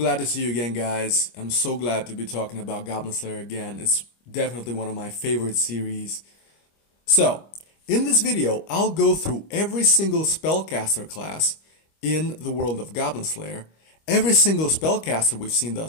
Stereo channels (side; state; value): right; late; 25 ms